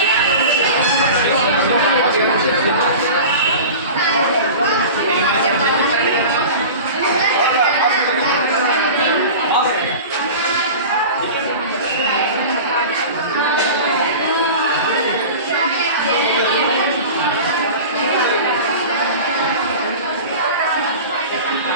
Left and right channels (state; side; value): inverted; both; correlation -0.34